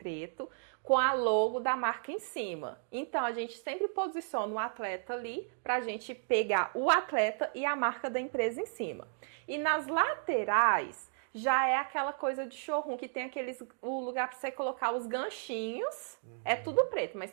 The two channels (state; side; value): silent; left; digital silence